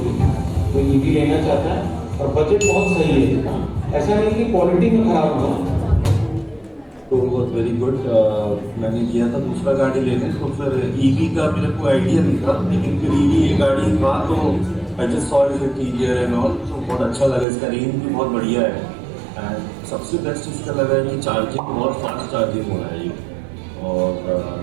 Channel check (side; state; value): left; drops out; at 17.4 s